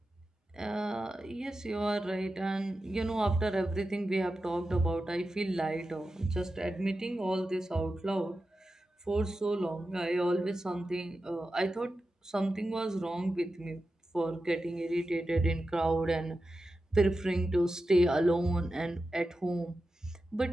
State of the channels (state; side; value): normal; both; correlation 0.91